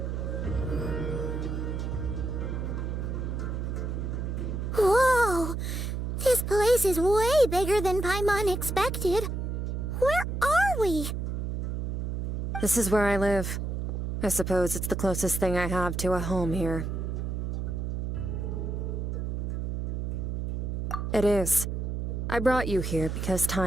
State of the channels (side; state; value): right; noise; hum, 2 dB below the sound